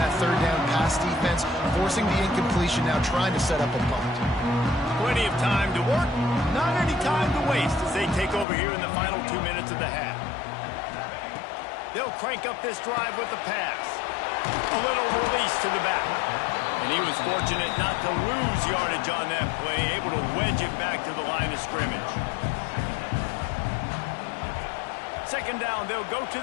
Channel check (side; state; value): right; drops out; at 8.5 s